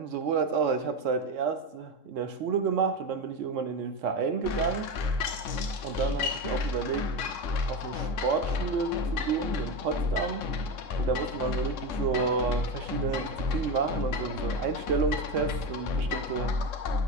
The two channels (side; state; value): left; late; 3.7 ms